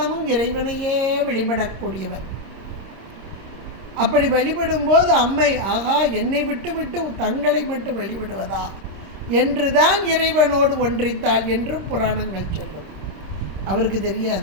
இறைவனையே வழிபடக்கூடியவர். அப்படி வழிபடும்போது அம்மை, ஆகா என்னை விட்டு விட்டு தங்களை மட்டும் வழிபடுவதா என்றுதான் இறைவனோடு ஒன்றித்தாள் என்றும் புராணங்கள் சொல்லும். அவருக்கு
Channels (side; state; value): left; late; 26 ms